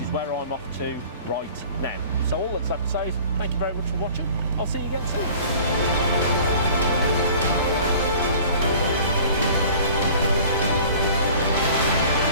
where I'm off to right now. So all that's left to say is thank you very much for watching. I'll see you again soon.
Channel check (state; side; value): inverted; both; correlation -0.46